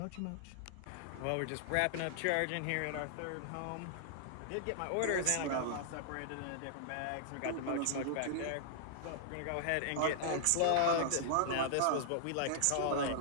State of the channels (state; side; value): different; both; correlation -0.01